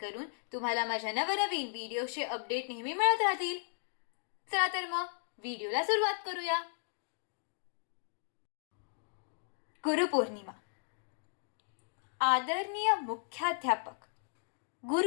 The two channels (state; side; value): silent; right; digital silence